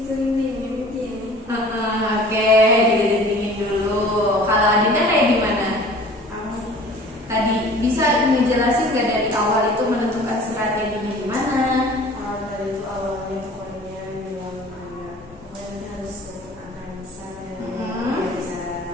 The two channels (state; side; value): normal; both; correlation 0.47